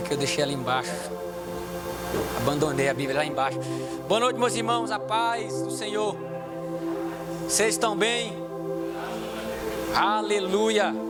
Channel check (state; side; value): identical; both; correlation 1.00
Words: que eu deixei ela embaixo. Abandonei a Bíblia lá embaixo. Boa noite, meus irmãos, a paz do Senhor. Vocês estão bem? Aleluia.